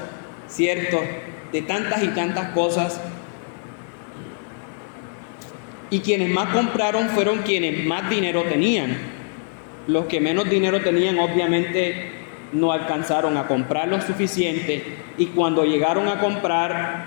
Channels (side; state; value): right; silent; 60 dB below the other